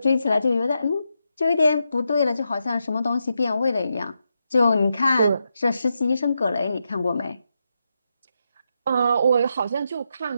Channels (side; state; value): both; inverted; correlation -0.85